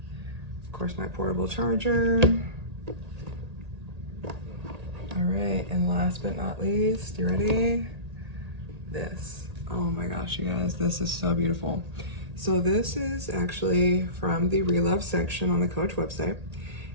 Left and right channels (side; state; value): left; late; 1.8 ms